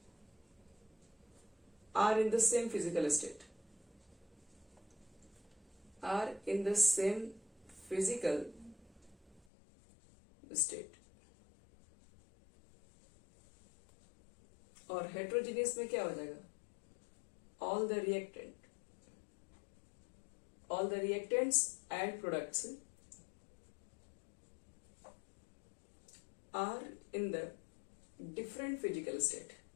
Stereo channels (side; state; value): right; drops out; at 9.4 s